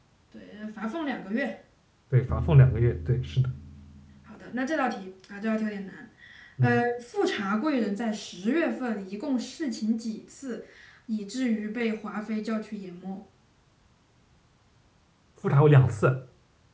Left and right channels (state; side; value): identical; both; correlation 1.00